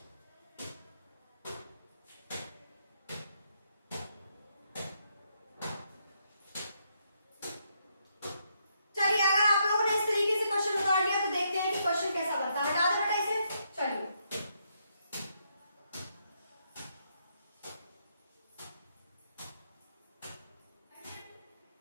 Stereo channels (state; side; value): inverted; both; correlation -0.77